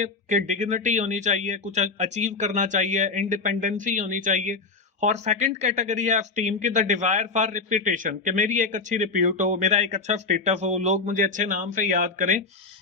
कि डिग्निटी होनी चाहिए, कुछ अचीव करना चाहिए, इंडिपेंडेंसी होनी चाहिए। और सेकंड कैटेगरी है एस्टीम की द डिजायर फॉर रिप्यूटेशन, कि मेरी एक अच्छी रिप्यूट हो, मेरा एक अच्छा स्टेटस हो, लोग मुझे अच्छे नाम से याद करें।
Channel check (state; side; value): quieter; right; 4.1 dB